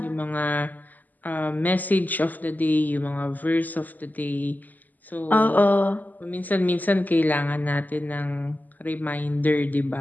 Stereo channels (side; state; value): right; late; 0.083 ms